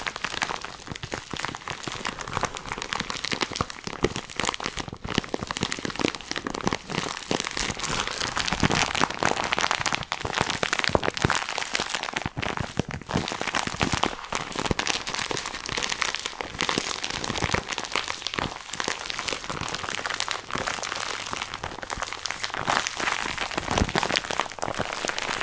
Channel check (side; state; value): both; identical; correlation 1.00